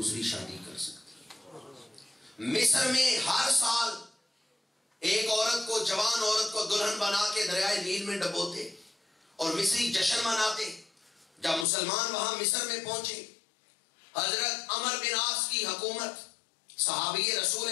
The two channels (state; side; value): drops out; right; at 11.7 s